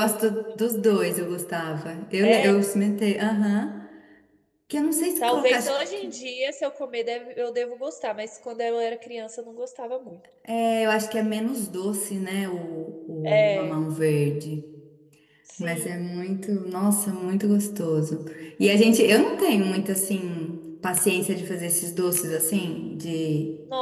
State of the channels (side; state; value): both; identical; correlation 1.00